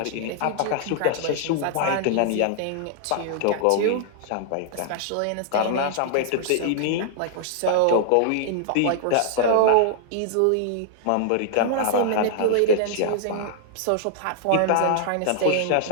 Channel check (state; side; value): different; both; correlation -0.01